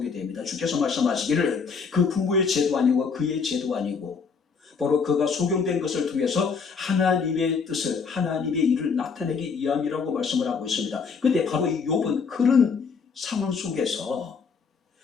됩니다. 주께서 말씀하시기를 그 부모의 죄도 아니고 그의 죄도 아니고 바로 그가 소경된 것을 통해서 하나님의 뜻을, 하나님의 일을 나타내기 위함이라고 말씀을 하고 있습니다. 근데 바로 이 욥은 그런 상황 속에서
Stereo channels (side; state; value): right; quieter; 5.5 dB